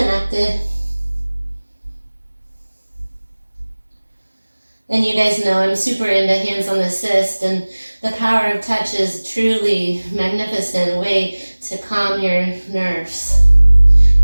And you guys know I'm super into hands on assist, and the power of touch is truly magnificent way to calm your nerves.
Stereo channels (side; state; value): both; inverted; correlation -1.00